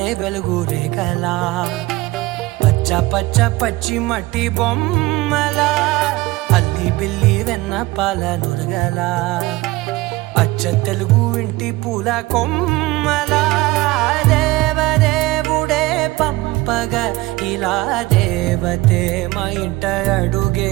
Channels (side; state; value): left; quieter; 19.9 dB